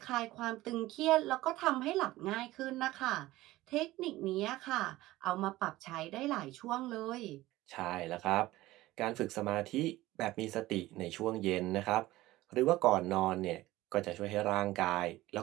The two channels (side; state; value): left; quieter; 17.3 dB